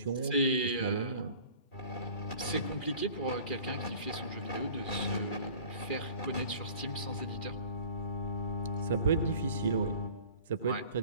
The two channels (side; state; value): right; late; 2.3 ms